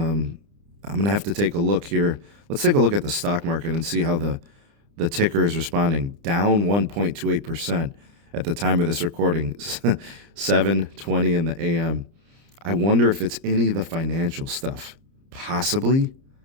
going to have to take a look here. Let's take a look at the stock market and see how the ticker is responding. Down 1.28% at the time of this recording, 7:20 in the a.m. I wonder if it's any of the financial stuff. Possibly.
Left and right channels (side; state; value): left; late; 30 ms